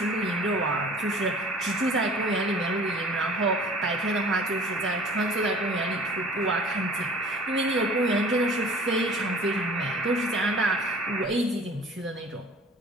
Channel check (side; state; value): both; normal; correlation 0.46